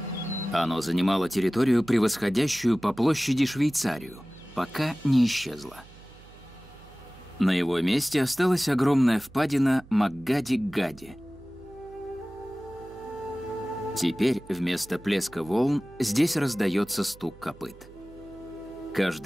Оно занимало территорию, превосходящую по площади Швейцарию, пока не исчезло. На его месте осталась огромная впадина Макгади-Гади. Теперь вместо плеска волн здесь раздается стук копыт.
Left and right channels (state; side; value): noise; right; hum, 22 dB below the sound